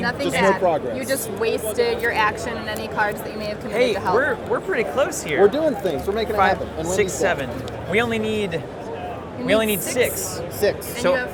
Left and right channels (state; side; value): identical; both; correlation 1.00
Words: Nothing Just no bad. progress. You just wasted your action and any cards that you may have committed Hey, to help. we're pretty close here. We're doing things. We're making it 5, happen. And 6, Wendy's dead. 7. We only need You we only need six. 6. 6. And So you have